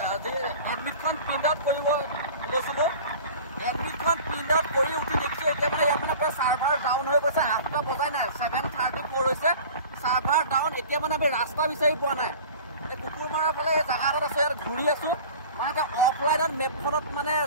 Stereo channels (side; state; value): both; inverted; correlation -0.41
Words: এডমিটখন প্ৰিণ্ট আউট কৰিব গৈছিলোঁ। এডমিটখন প্ৰিণ্ট আউট কৰি উঠি দেখিছোঁ এতিয়া মানে ইয়াত মানে প্ৰায় চাৰ্ভাৰ ডাউন হৈ গৈছে। 8টা বজাই নাই, 7:34 হৈছে, চাৰ্ভাৰ ডাউন। এতিয়া মানে আমি ৰাস্তা বিচাৰি পোৱা নাই। এই কুকুৰমাৰাৰ ফালে এই জেগা এটাত আছে, ইয়াত ঘূৰি আছোঁ। মানে এতিয়া অফলাইনত মেপখনত মানে